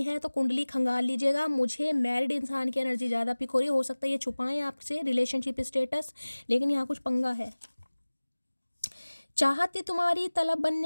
है तो कुंडली खंगाल लीजिएगा। मुझे मैरिड इंसान की एनर्जी ज़्यादा पिक हो रही है। हो सकता है ये छुपाएं आपसे रिलेशनशिप स्टेटस, लेकिन यहाँ कुछ पंगा है। चाहत थी तुम्हारी तलब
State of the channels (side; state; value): both; inverted; correlation -1.00